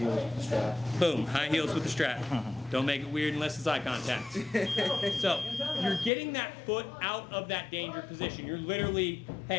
with the strap. Boom, high heels with the strap. Don't make it weird unless it's eye contact. So you're getting that foot out of that danger position. You're literally,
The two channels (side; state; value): right; drops out; at 6.1 s